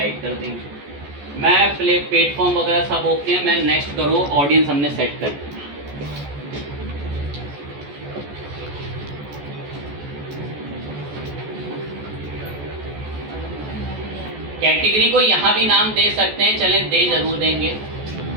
कर देंगे। मैं प्लेटफॉर्म वगैरह सब ओके हैं, मैं नेक्स्ट करो, ऑडियंस हमने सेट कर दी। कैटेगरी को यहाँ भी नाम दे सकते हैं, चलें दे जरूर देंगे।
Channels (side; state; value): left; late; 14 ms